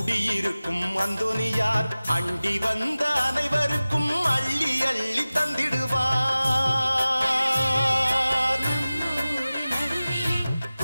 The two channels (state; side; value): inverted; both; correlation -0.97